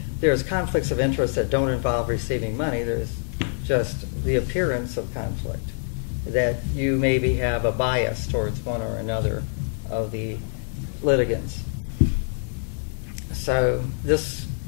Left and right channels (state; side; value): silent; right; digital silence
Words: there's conflicts of interest that don't involve receiving money. There's just the appearance of conflict, that you maybe have a bias towards one or another of the litigants. So this